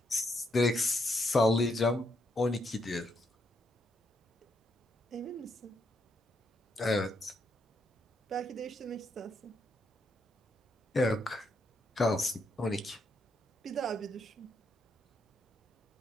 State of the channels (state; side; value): normal; both; correlation 0.77